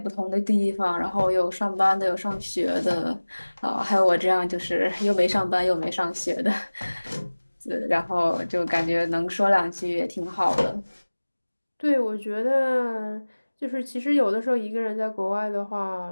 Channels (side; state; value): both; inverted; correlation -1.00